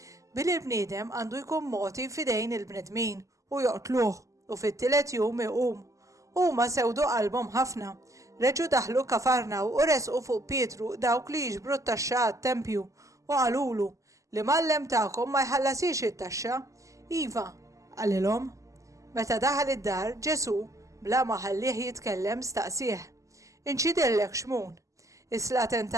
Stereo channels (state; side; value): late; left; 0.16 ms